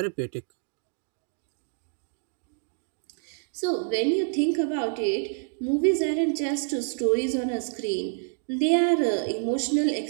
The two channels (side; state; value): left; silent; digital silence